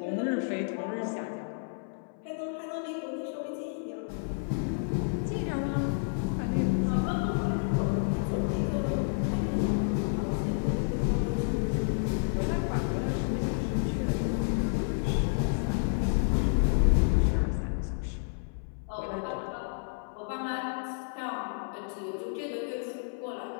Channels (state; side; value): silent; right; 58 dB below the other